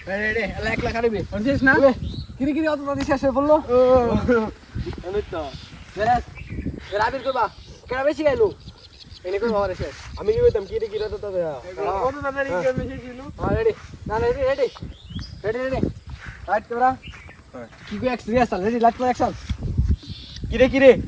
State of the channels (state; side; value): identical; both; correlation 1.00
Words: রেডি এক লাখ আরবি হচ্ছিস না কিরি কিরি অত তাড়াতাড়ি শেষ হয়ে বললো আমি তো রাবির করবা কেনা বেশি গাইলো এনে করবো আমার শেষ। আমি কি কইতাম কি রে কি রে তো তবে কত তাড়াতাড়ি গেম এসে ছিল রেডি না ready ready ready ready light camera কি কই experience ready light camera action. কি রে